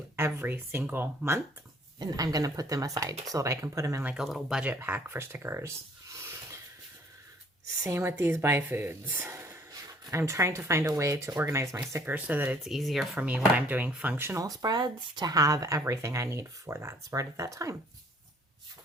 every single month. And I'm going to put them aside so that I can put them in like a little budget pack for stickers. Same with these buy foods. I'm trying to find a way to organize my stickers so that it's easier for me when I'm doing functional spreads to have everything I need for that spread at that time.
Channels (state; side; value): normal; both; correlation 0.59